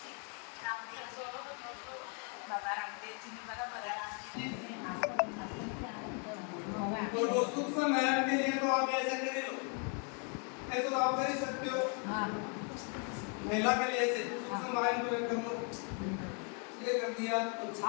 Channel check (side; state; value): right; quieter; 39.0 dB